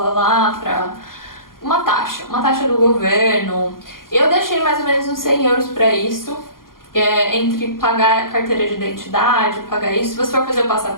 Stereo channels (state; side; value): late; right; 0.91 ms